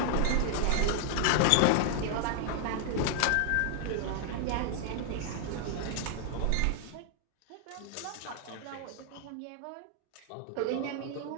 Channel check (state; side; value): different; both; correlation 0.00